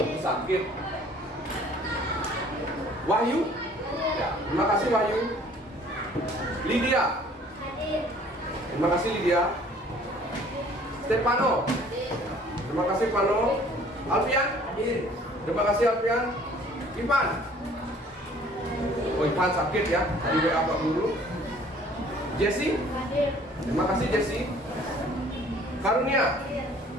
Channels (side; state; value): both; normal; correlation 0.54